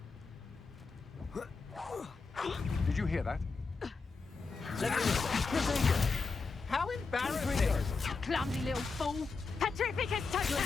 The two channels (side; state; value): right; quieter; 4.4 dB